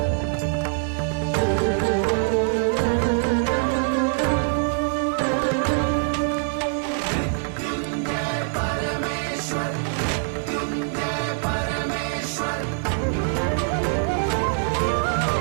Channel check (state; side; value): silent; left; 63 dB below the other